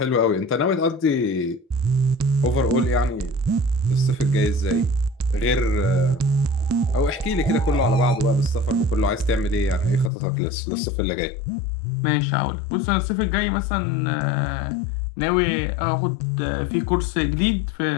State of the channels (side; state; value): right; drops out; at 10.1 s